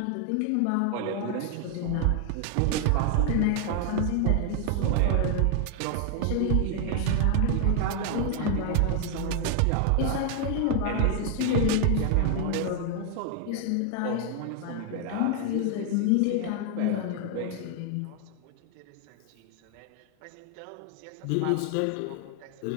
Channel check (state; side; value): different; both; correlation 0.00